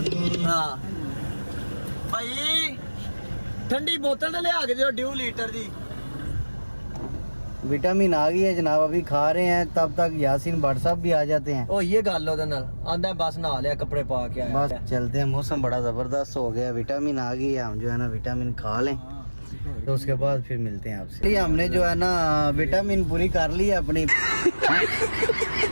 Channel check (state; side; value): inverted; both; correlation -1.00